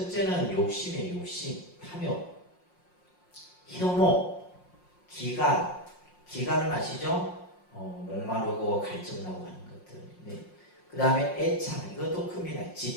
욕심이에요. 욕심, 탐욕, 혐오, 기간. 기간은 아시죠? 목마르고 갈증나고 하는 것들. 네. 그 다음에 애착, 이것도 큽니다.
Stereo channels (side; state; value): right; late; 5.6 ms